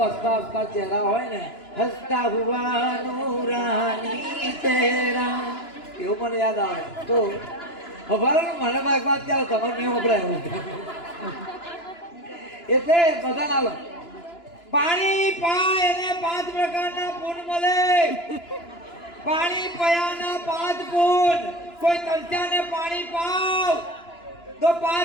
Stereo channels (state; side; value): late; right; 2.9 ms